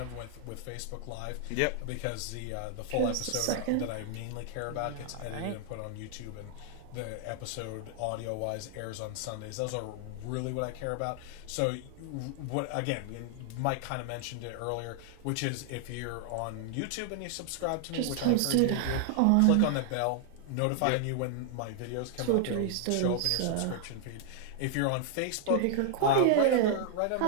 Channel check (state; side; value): different; both; correlation 0.00